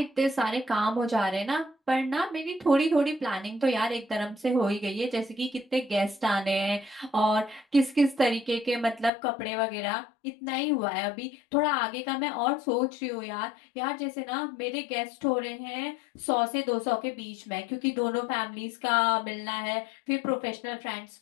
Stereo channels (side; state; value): right; drops out; at 9.1 s